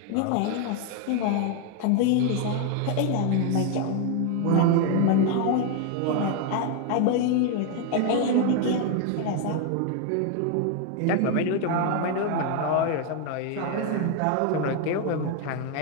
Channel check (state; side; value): different; both; correlation 0.01